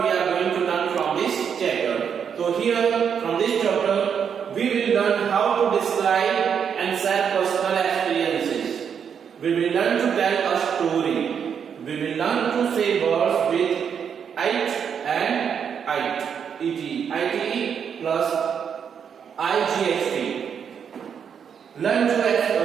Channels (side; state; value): left; quieter; 7.5 dB